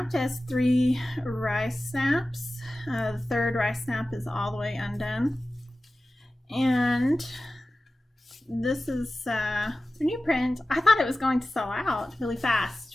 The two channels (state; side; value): normal; both; correlation 0.95